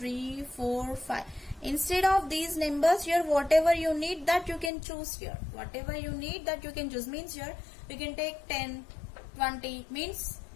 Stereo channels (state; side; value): drops out; right; at 4.7 s